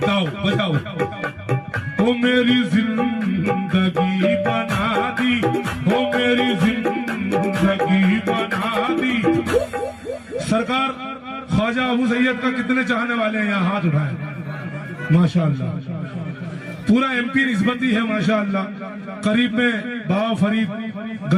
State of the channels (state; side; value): identical; both; correlation 1.00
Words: गाओ बजाओ। वो मेरी जिंदगी बना दी, वो मेरी जिंदगी बना दी। सरकार ख्वाजा अबू सैयद का कितने चाहने वाले हैं यहाँ हाथ उठाए। माशाअल्लाह पूरा एमपी निस्बती है माशाअल्लाह। करीब में बाबा फरीद